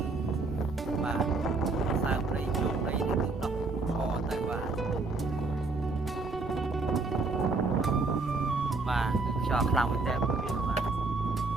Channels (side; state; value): left; quieter; 3.7 dB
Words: បាទសើព្រៃជោគព្រៃនេះគឺដោះខទៅបាទបាទគឺខ្យល់ខ្លាំងមែនតើបងយើងបាទ